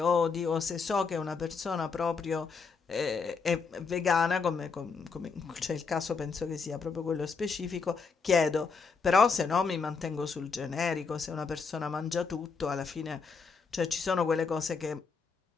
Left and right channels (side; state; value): right; quieter; 5.1 dB